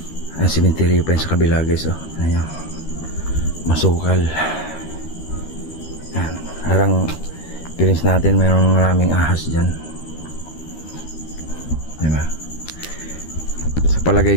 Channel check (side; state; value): right; late; 13 ms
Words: Ang simenteryo pa yun sa kabila guys, oh. Ayan, masukal. Ayan, harang feelings natin mayroong maraming ahas dyan, diba? Sa palagay